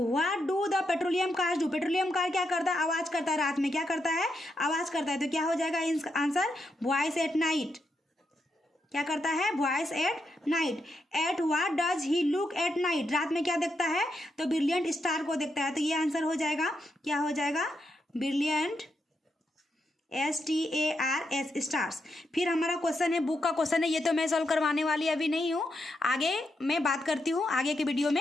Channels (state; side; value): normal; both; correlation 0.82